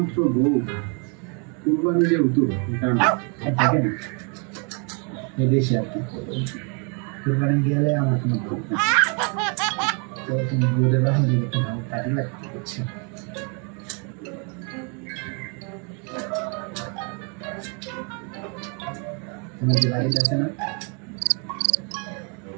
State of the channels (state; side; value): quieter; left; 36.1 dB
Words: বউ কুরবানি যেহেতু দেখেন এদেশে আর কি কুরবানি গেলে আমার কোনো ভোট না। তো তুমি বউদের বাসন দিকে একটু ভালো কাজে লাগতে হচ্ছে। তোমার যে বাড়িটা আছে না,